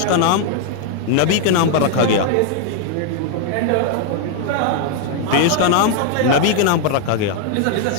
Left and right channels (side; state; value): both; different; correlation 0.00